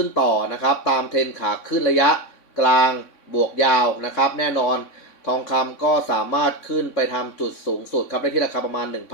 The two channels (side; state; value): right; late; 3.6 ms